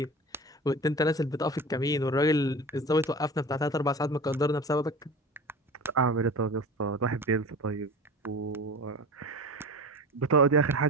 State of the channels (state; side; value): normal; both; correlation 0.34